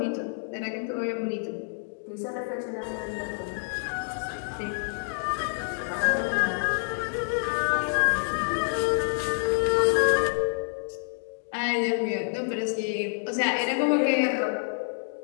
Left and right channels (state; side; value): silent; right; digital silence